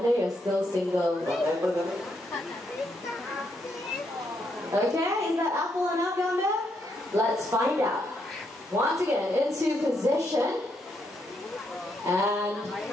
you're still single. What apple, Gamba? Okay, is that apple enough, Gamba? Let's find out. Once again, into position. And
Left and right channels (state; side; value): normal; both; correlation 0.77